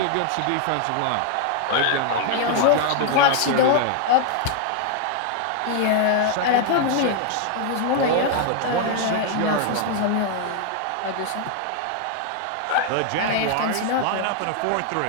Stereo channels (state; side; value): different; both; correlation 0.00